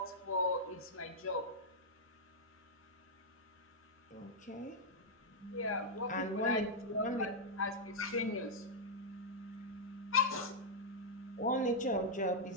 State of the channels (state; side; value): normal; both; correlation -0.06